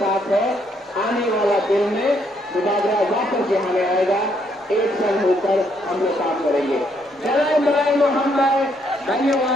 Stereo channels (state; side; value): normal; both; correlation 0.72